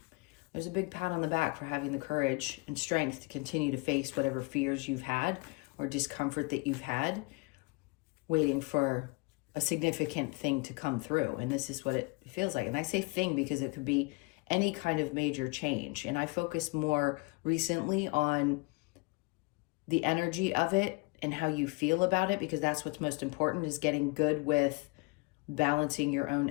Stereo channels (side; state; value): right; quieter; 28.2 dB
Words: there's a big pat on the back for having the courage and strength to continue to face whatever fears you've had or discomfort that you've had, waiting for a significant thing to come through. And this is what it feels like. And I say thing because it could be any kind of major change. And I focus more recently on the energy of it and how you feel about it, because that's what's most important, is getting good with balancing your own